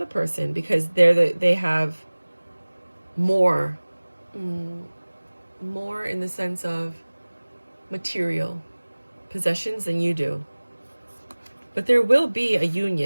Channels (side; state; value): both; inverted; correlation -1.00